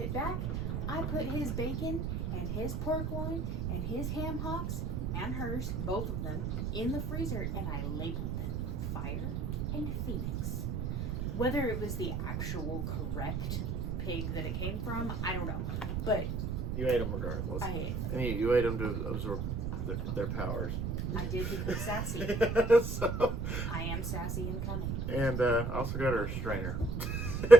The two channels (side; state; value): right; noise; rumble, 1 dB below the sound